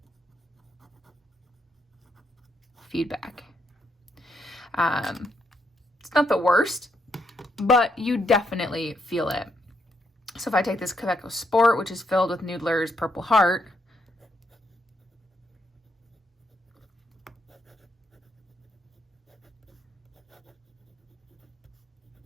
feedback. It's not the worst, but you definitely feel it. So if I take this Quebeco Sport, which is filled with Noodler's Purple Heart,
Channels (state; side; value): normal; both; correlation 0.77